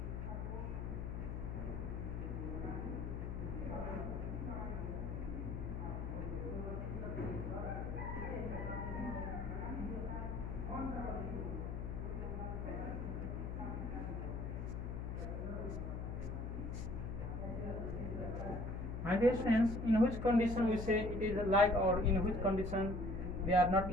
My dear friends, in which condition we say it is like, or in which condition they are not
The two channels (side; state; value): left; noise; hum, 4 dB below the sound